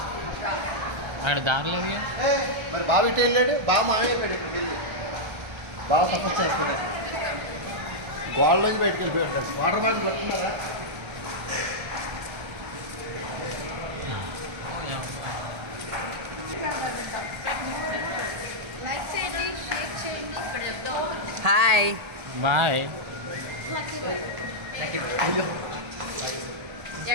అక్కడ దారలేదు. మరి బావ ఇటు వెళ్ళాడు, బావ మామే చెప్పాడు ఇప్పుడు వెళ్ళి బావ సపోర్ట్ చేస్తున్నాడు. గోడలోంచి బయటకు వెళ్ళిపోయాడు. వాటర్ బాటిల్ పట్టుకున్నారా? లైక్ చేయండి, షేర్ చేయండి. Hi bye.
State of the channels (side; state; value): left; late; 1.3 ms